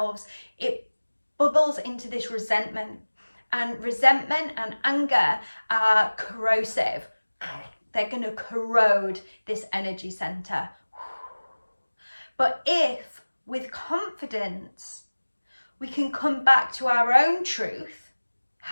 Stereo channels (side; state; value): both; inverted; correlation -1.00